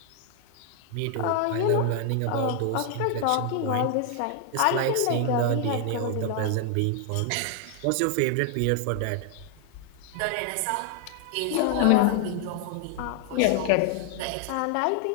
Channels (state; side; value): different; both; correlation 0.00